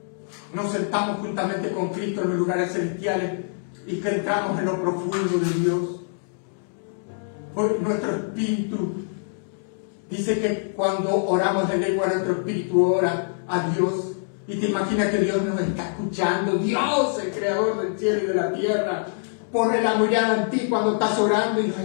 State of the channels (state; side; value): silent; right; digital silence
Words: nos sentamos juntamente con Cristo en los lugares celestiales y que entramos en lo profundo de Dios? Porque nuestro espíritu dice que cuando oramos en lengua, nuestro espíritu ora a Dios. Y te imaginas que Dios nos está escuchando. Dios, el creador del cielo y de la tierra, pone la mirada en ti cuando estás orando y nos